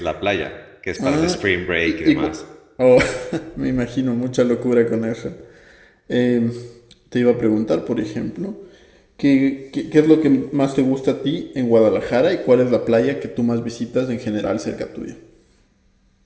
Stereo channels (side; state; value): both; identical; correlation 1.00